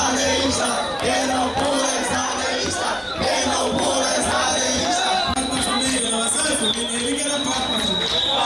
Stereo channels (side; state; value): both; identical; correlation 1.00